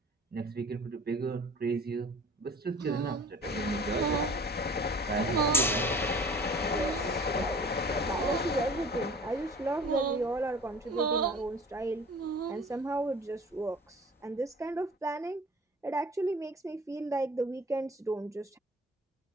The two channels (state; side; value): normal; both; correlation 0.45